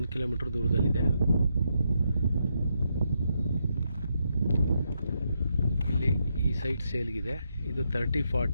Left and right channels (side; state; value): both; inverted; correlation -0.80